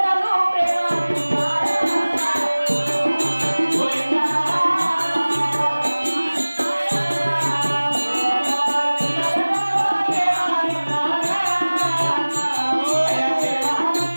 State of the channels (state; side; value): inverted; both; correlation -1.00